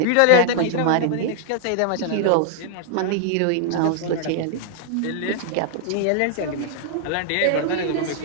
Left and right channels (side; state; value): both; different; correlation 0.00